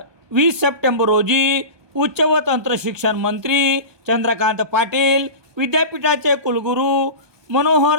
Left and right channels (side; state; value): left; late; 1.2 ms